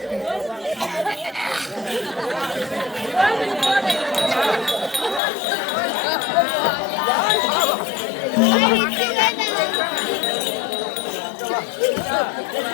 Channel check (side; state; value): right; drops out; at 5.2 s